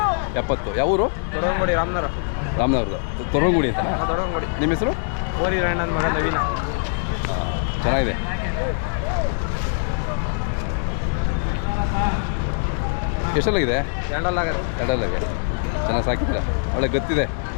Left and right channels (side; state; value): right; silent; digital silence